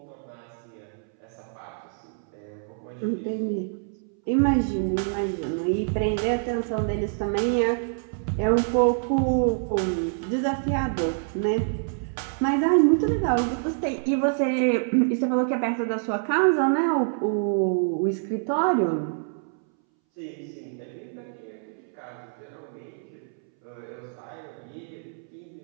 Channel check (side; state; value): left; silent; 61 dB below the other